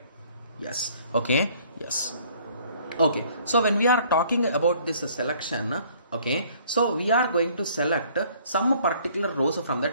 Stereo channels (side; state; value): both; inverted; correlation -0.58